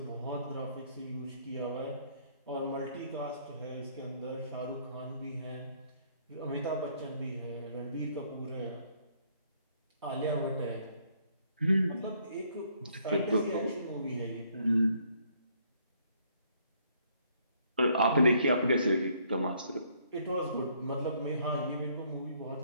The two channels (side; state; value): both; inverted; correlation -0.66